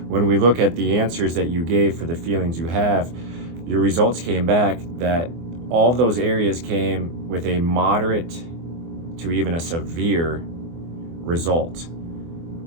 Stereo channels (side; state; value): left; late; 24 ms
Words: when we look at the answers that you gave for the feelings you have, your results came back that all of those areas came with a moderate to even a severe result.